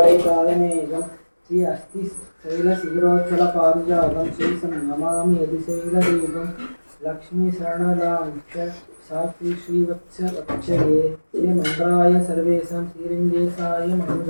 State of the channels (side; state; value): both; inverted; correlation -1.00